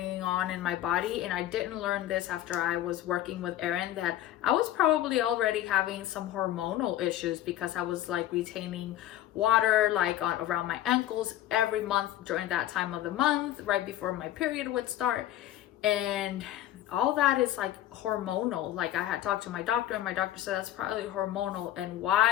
on in my body, and I didn't learn this after I was working with Erin, that I was probably already having some hormonal issues, because I was like retaining water like around my ankles every month during that time of the month, right before my period would start. And all that is like hormonal. Like, I had talked to my doctor, and my doctor said that's probably hormonal. And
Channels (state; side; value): quieter; right; 13.1 dB